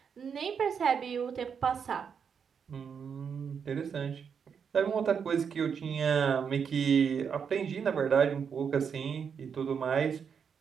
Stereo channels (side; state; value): left; quieter; 6.8 dB